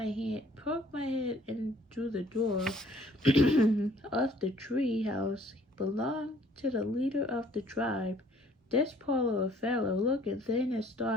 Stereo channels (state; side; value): normal; both; correlation 0.58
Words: head in through the door of the treehouse. Belonged to the leader of the tribe. This poor little fellow, looking thin and